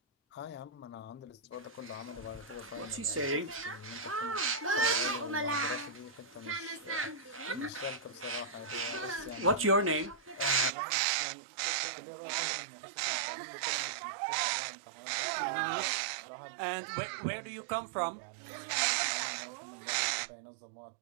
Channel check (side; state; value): left; drops out; at 10.7 s